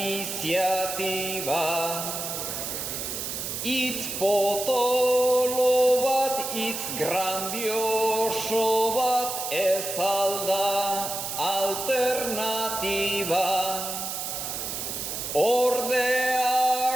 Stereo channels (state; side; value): noise; right; hiss, 5 dB below the sound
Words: Itz potolo bat, itz grandioso bat, ez alda alternatiba.